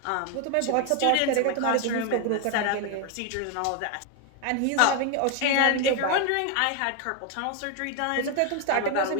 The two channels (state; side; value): different; both; correlation 0.01